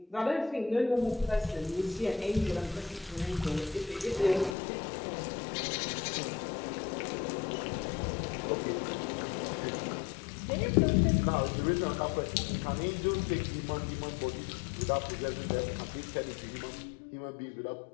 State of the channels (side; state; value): right; drops out; at 4.5 s